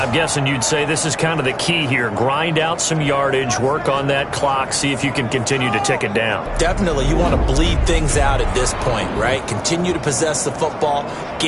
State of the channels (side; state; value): both; identical; correlation 1.00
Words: guessing you'd say this is kind of the key here. Grind out some yardage, work on that clock, see if you can continue to tick it down. Definitely, you want to bleed things out at this point, right? Continue to possess the football,